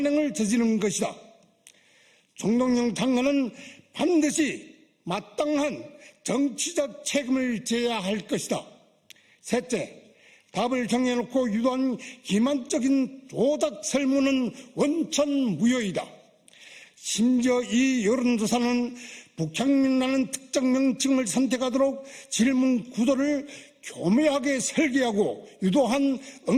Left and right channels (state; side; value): identical; both; correlation 1.00